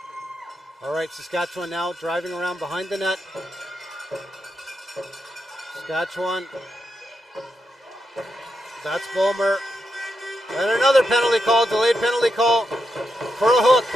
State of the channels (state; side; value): normal; both; correlation 0.85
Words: All right, Saskatchewan now driving around behind the net. Saskatchewan. That's Bulmer. And another penalty call, delayed penalty call for a hook.